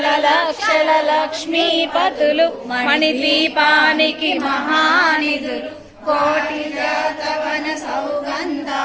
లక్షల లక్ష్మీపతులు మణిద్వీపానికి మహానిధులు కోటి జాతవన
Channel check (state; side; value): identical; both; correlation 1.00